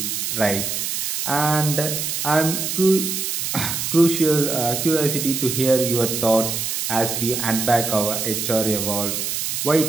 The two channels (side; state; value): right; noise; hiss, 2 dB below the sound